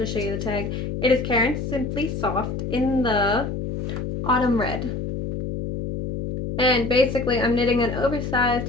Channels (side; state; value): left; noise; hum, 4 dB below the sound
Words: show you the tag. It is Karen Simply Soft in the Autumn Red. And basically I'm knitting an oversized